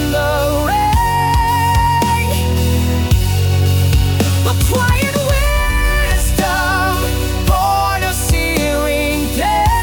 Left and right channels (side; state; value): both; identical; correlation 1.00